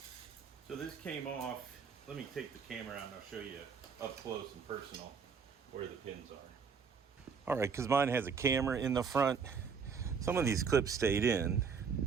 so this came off. Let me take the camera out and I'll show you up close and personal where the pins are. All right, because mine has a camera in the front. Some of these clips stayed in,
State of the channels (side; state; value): left; quieter; 6.0 dB